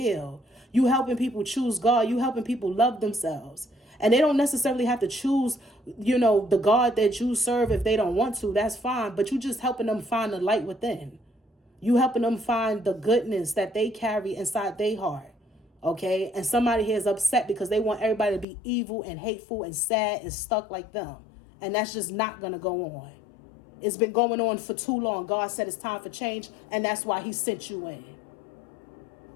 You helping people choose God. You helping people love themselves. And they don't necessarily have to choose, the God that you serve if they don't want to. That's fine. But you just helping them find the light within. You helping them find the goodness that they carry inside their heart. Okay? And somebody here is upset because they want everybody to be evil and hateful and sad and stuck like them. And that's just not going to go on. It's been going on for too long. God said it's time for change, and that's why he sent you in.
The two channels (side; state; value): right; drops out; at 18.4 s